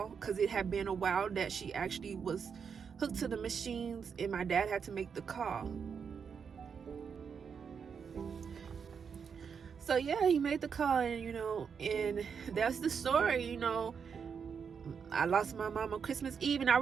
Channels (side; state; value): left; quieter; 6.5 dB